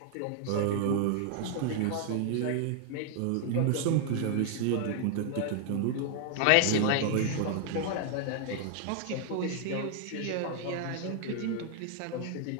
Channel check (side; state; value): both; different; correlation 0.00